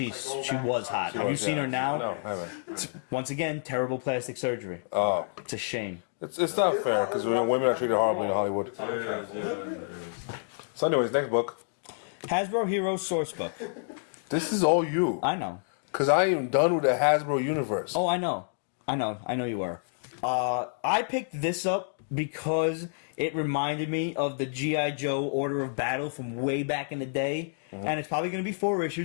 was hot. Have you seen her now? No, I haven't. Once again, terrible plastic surgery. Oh. It's a shame. It's not fair because women are treated horribly in Hollywood. It is. So, anyways, next book. Hasbro Heroes Sourcebook. This is all you. I know. Because I am done with the Hasbro universe. Oh, I know you were. I picked this up because it reminded me of the G.I. Joe Order of Battle from way back in the day. And it's probably going to be 4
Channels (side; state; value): right; silent; digital silence